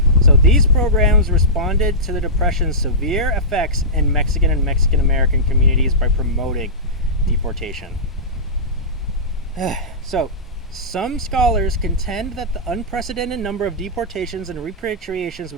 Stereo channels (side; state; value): both; normal; correlation -0.17